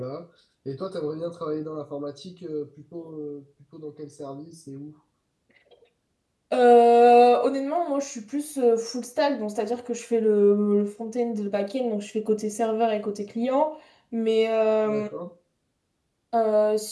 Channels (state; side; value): identical; both; correlation 1.00